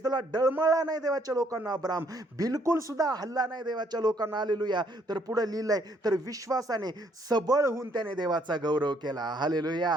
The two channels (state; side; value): normal; both; correlation 0.67